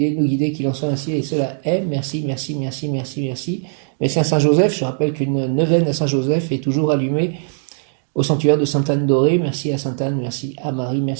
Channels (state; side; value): silent; left; 66 dB below the other